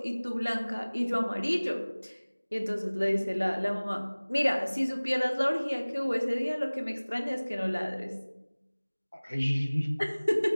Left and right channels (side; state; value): both; inverted; correlation -1.00